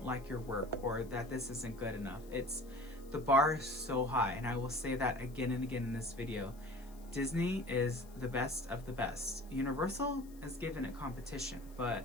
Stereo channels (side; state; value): left; noise; hiss, 25 dB below the sound